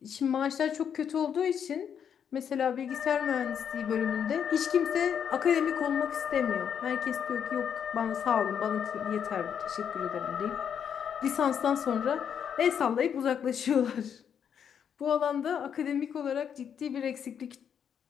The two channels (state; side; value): quieter; right; 8.1 dB